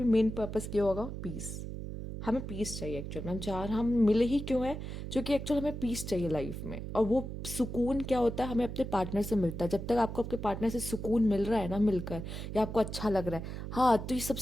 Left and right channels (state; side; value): noise; right; hum, 7 dB below the sound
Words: मेन पर्पस क्या होगा, पीस। हमें पीस चाहिए एक्चुअल में, हम मिले ही क्यों हैं, क्योंकि एक्चुअल हमें पीस चाहिए लाइफ में। और वो सुकून क्या होता है, हमें अपने पार्टनर से मिलता है। जब तक आपको आपके पार्टनर से सुकून मिल रहा है ना मिलकर, या आपको अच्छा लग रहा है, हाँ, तो ये